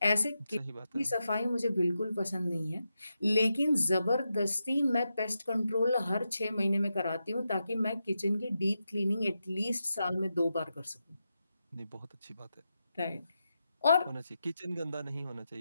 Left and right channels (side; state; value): both; inverted; correlation -0.88